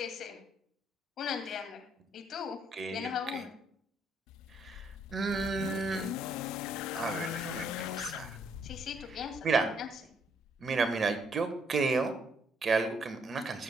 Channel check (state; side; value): normal; both; correlation 0.70